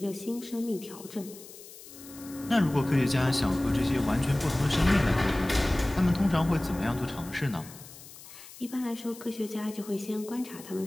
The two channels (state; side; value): noise; left; hiss, 17 dB below the sound